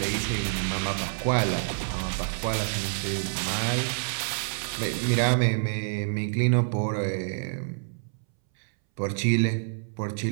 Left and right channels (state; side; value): silent; left; 60 dB below the other